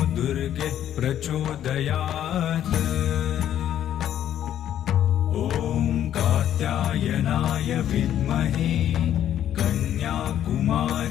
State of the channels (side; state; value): right; quieter; 10.9 dB